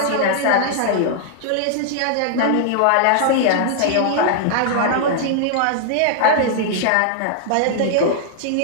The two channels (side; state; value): both; different; correlation -0.01